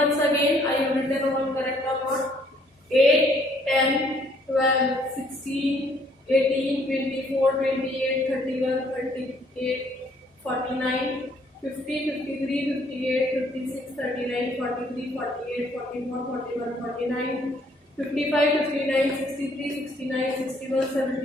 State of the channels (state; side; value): normal; both; correlation 0.64